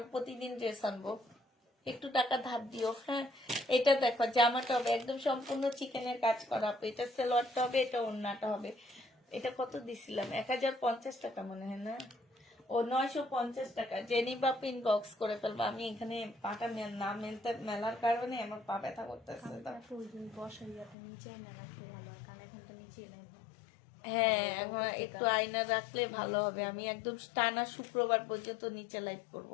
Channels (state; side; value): drops out; right; at 21.0 s